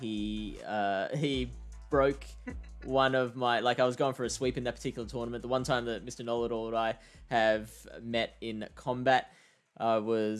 broke one of my... Like, I was going for a sweep in that particular tournament. The one time that Mr. Know-It-All and I have met in combat, I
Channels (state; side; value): identical; both; correlation 1.00